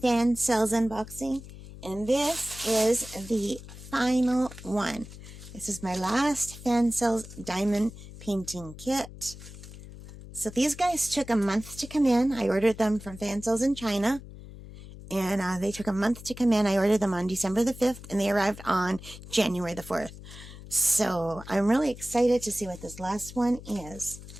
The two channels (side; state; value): left; noise; hum, 15 dB below the sound